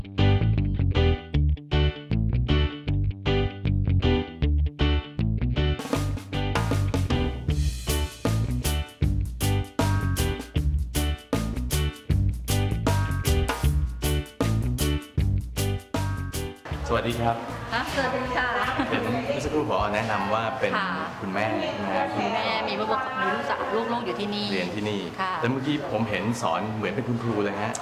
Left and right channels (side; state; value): both; identical; correlation 1.00